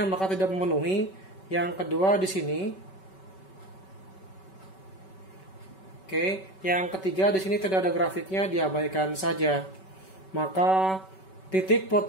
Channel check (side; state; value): right; late; 5.3 ms